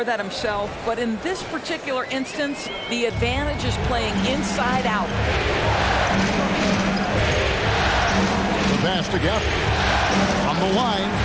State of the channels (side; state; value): both; identical; correlation 1.00